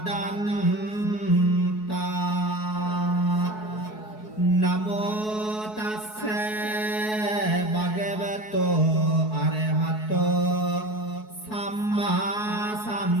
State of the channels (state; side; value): late; right; 4.7 ms